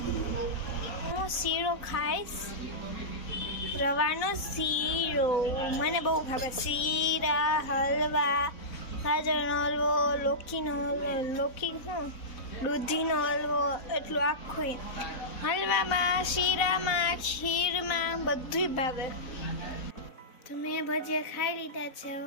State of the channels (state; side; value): late; right; 4.0 ms